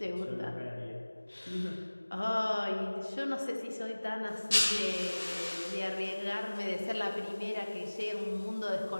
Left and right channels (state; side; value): inverted; both; correlation -1.00